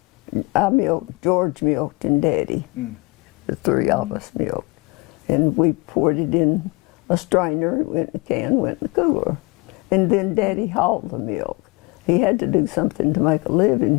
I milked, George milked, and Daddy. The 3 of us milked. And we poured it in a strainer, it went in a can, went in the cooler. And then Daddy hauled the milk. He had to do something to make a living.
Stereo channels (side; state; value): right; quieter; 26.3 dB